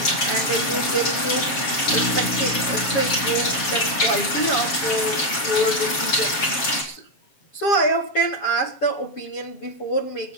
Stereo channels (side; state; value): right; late; 7.5 ms